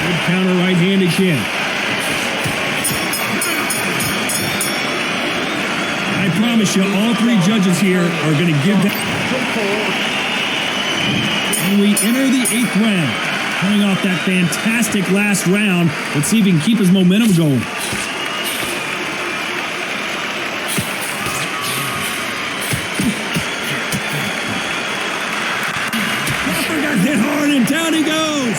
Good counter right hand again. I promise you, all 3 judges here are going to give that. And we enter the 8th round. Coming off that fantastic last round, let's see if he can keep his momentum going. down he goes.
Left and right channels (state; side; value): identical; both; correlation 1.00